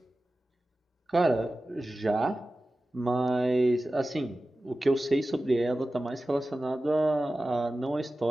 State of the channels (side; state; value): both; normal; correlation 0.95